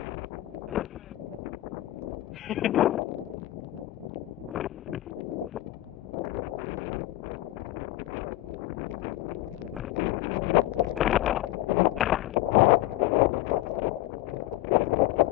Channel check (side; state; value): right; quieter; 16.4 dB